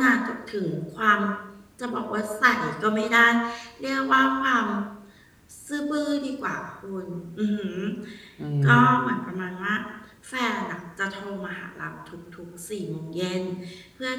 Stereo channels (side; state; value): both; identical; correlation 1.00